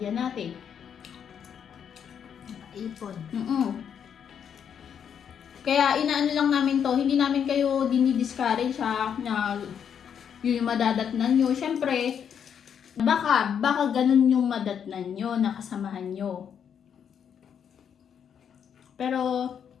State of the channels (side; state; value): right; quieter; 8.0 dB